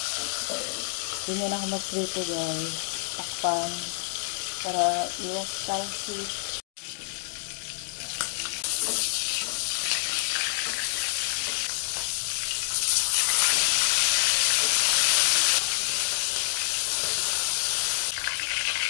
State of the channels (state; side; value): silent; right; digital silence